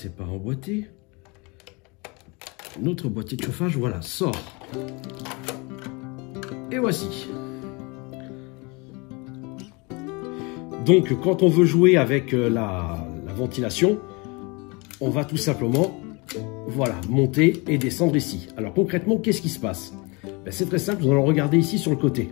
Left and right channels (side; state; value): right; quieter; 28.4 dB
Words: pas emboîté. Notre boîtier de chauffage, voilà, sort. Et voici. Donc, quand on veut jouer avec la ventilation, on va tout simplement, voilà, monter et descendre ici. Alors, concrètement, qu'est-ce qui se passe? C'est très simple, nous allons regarder ici sur le côté.